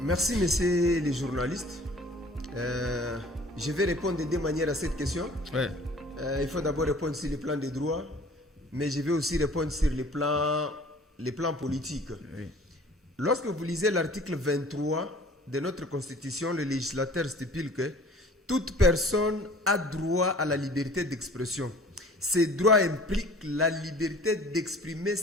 Merci messieurs les journalistes. Je vais répondre de deux manières à cette question. Ouais. Il faut d'abord répondre sur le plan des droits, mais je vais aussi répondre sur les plans politiques. Oui. Lorsque vous lisez l'article 23 de notre Constitution, le législateur stipule que toute personne a droit à la liberté d'expression. Ces droits impliquent la liberté d'exprimer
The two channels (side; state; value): both; normal; correlation 0.49